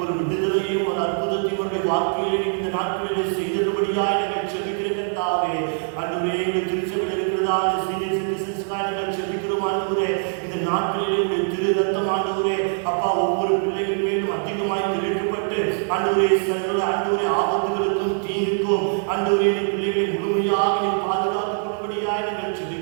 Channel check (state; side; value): silent; left; digital silence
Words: ஒரு விடுதலையும் ஒரு அற்புதத்தையும் வாழ்க்கையிலே இந்த நாட்களிலே செய்தபடியாய் நாங்கள் செபிக்கிற கர்த்தாவே, ஆண்டவரே எங்கள் திருச்சபையில் இருக்கிறதா சீனியர் சிட்டிசன்ஸ்காக நாங்கள் செபிக்கிறோம். ஆண்டவரே இந்த நாட்களிலே உடைய திரு ரத்தம் ஆண்டவரே அப்பா ஒவ்வொரு பிள்ளைகள் மேலும் அதிகமாய் திரைக்கப்பட்டு ஆண்டவரே சகல ஆண்டவரே ஆபத்துகளுக்கும் தீங்குக்கும் ஆண்டவரே நீ பிள்ளைகளை முழுமையாக நீ பாதுகாத்துக் கொள்ளும்படியாய் நாங்கள்